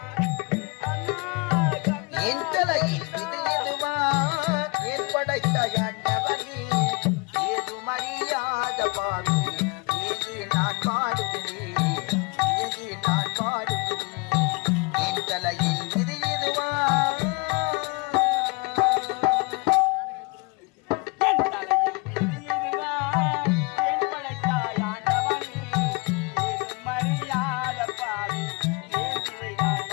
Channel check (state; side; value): quieter; right; 28.2 dB